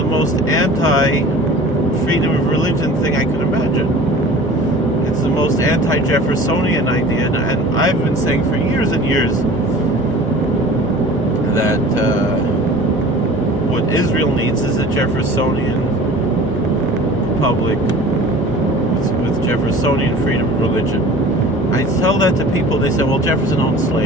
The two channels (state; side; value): normal; both; correlation 0.42